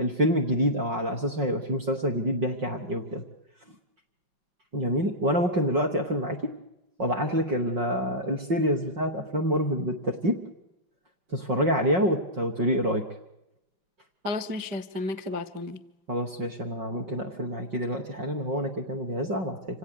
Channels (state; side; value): late; left; 5.5 ms